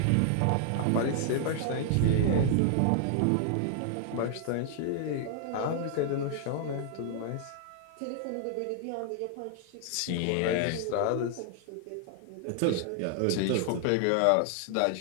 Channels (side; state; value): both; different; correlation 0.00